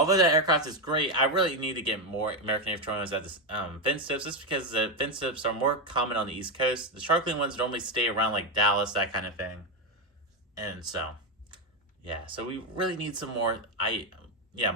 that aircraft is great, I really need to get more American A321s at the fin tips, just because the fin tips are more common on the East Coast. The Sharklet ones normally stay around like Dallas, that kind of thing. And so yeah, so we really need some more IE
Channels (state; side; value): normal; both; correlation 0.08